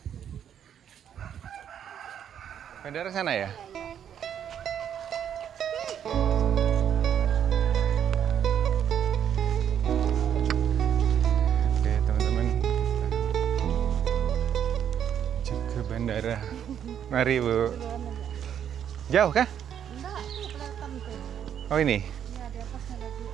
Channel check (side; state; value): left; quieter; 9.1 dB